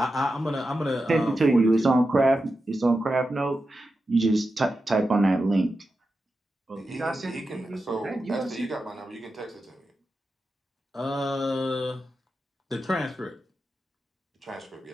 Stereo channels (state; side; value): normal; both; correlation 0.90